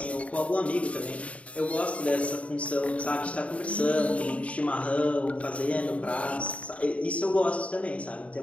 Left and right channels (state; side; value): late; right; 0.065 ms